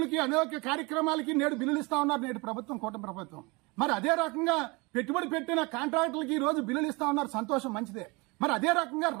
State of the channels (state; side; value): quieter; left; 26.6 dB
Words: అనేక కార్యక్రమాలకి నేడు బిల్లులు ఇస్తా ఉన్నారు నేడు ప్రభుత్వం, కూటమి ప్రభుత్వం. మరి అదే రకంగా పెట్టుబడి పెట్టిన కాంట్రాక్టులకి ఈ రోజు బిల్లులు ఇస్తా ఉన్నారు, సంతోషం, మంచిదే. మరి అదే రకంగా